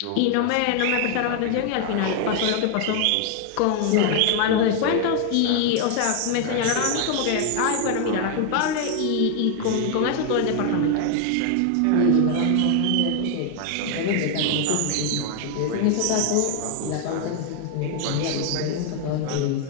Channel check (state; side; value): different; both; correlation 0.00